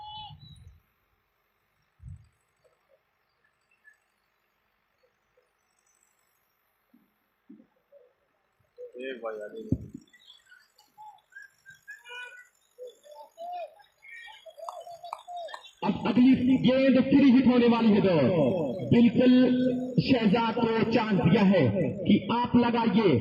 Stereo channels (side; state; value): both; identical; correlation 1.00